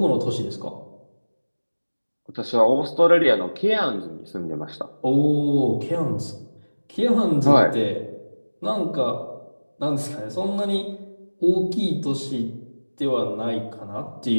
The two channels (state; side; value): inverted; both; correlation -1.00